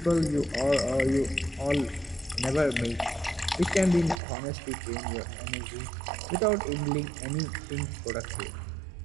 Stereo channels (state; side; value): drops out; left; at 4.2 s